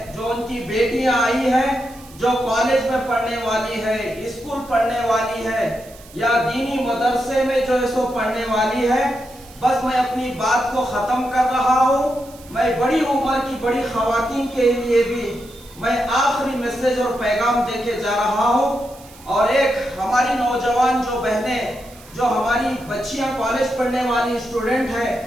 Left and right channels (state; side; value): noise; right; hiss, 22 dB below the sound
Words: جو ان کی بیٹیاں آئی ہیں، جو کالج میں پڑھنے والی ہے، اسکول پڑھنے والی ہے، یا دینی مدرسے میں جو ہے سو پڑھنے والی ہے، بس میں اپنی بات کو ختم کر رہا ہوں۔ میں بڑی عمر کی بڑی خواتین کے لیے بھی میں آخری میسیج اور پیغام دے کے جا رہا ہوں، اور ایک ہماری نوجوان جو بہنیں، جو ہماری بچیاں کالج پڑھنے والی اسٹوڈنٹ ہیں،